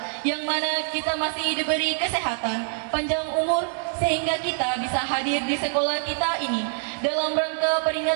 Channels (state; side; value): silent; left; digital silence